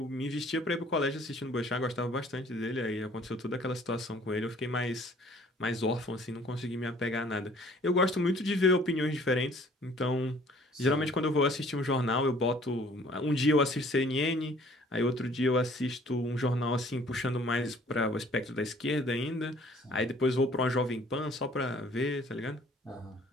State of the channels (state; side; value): normal; both; correlation 0.55